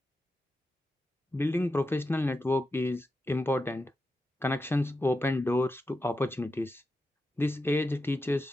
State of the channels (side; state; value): both; normal; correlation 0.89